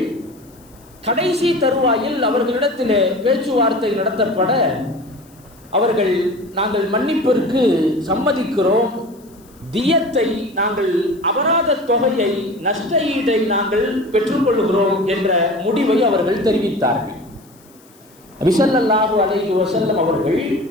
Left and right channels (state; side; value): noise; left; hiss, 28 dB below the sound